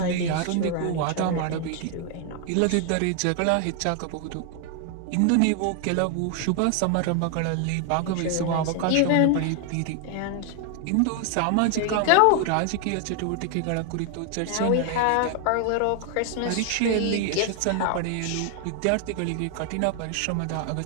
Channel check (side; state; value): both; different; correlation 0.00